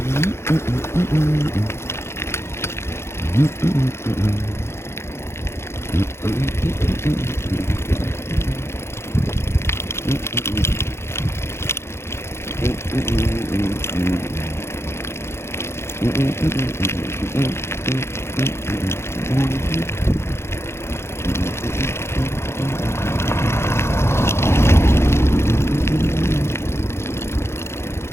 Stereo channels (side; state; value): right; late; 0.12 ms